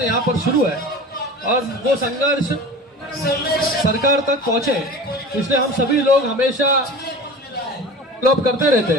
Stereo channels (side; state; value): both; normal; correlation 0.36